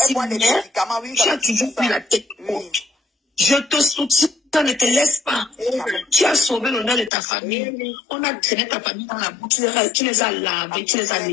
mais tu as toujours pris la tête haute. Je te soutiens Ça ne te laisse pas. Tu as sauvé l'honneur de ta famille. On a traîné ta famille dans la boue. Tu les as lavés, tu les as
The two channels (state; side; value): drops out; right; at 7.1 s